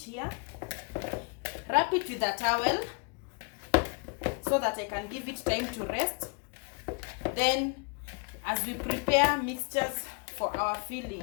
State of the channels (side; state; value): right; quieter; 35.3 dB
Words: wrap it with a towel so that I can give it time to rest. Then as we prepare mixtures for our